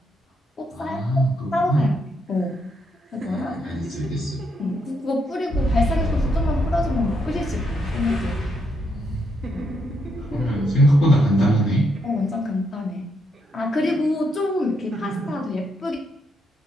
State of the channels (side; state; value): both; normal; correlation 0.78